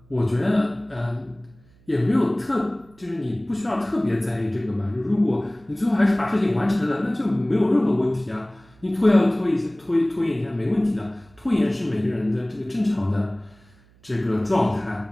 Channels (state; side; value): noise; right; hum, 29 dB below the sound